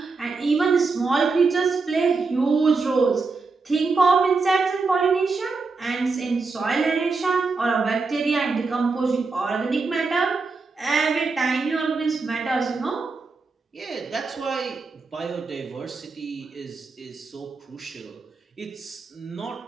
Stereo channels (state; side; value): quieter; left; 4.2 dB